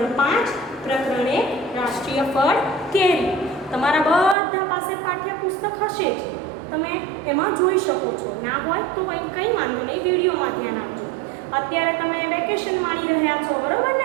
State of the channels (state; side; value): drops out; left; at 4.4 s